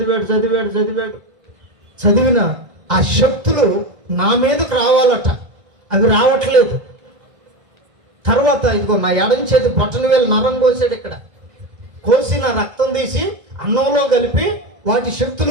చదివిన ఆ శక్తులు నా మీదకు రావాలట, అవి రావట్లేదు. తర్వాత ఇదిగో నా ఎడం చేతి బొట్టన వేలు నరం కోసాడు. ఇక్కడ కోసి నా రక్తం తీసి అన్నంలో కలిపి వాటి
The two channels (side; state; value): left; late; 1.6 ms